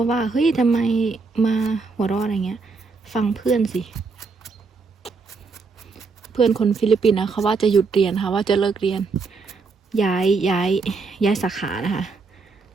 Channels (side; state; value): left; quieter; 4.4 dB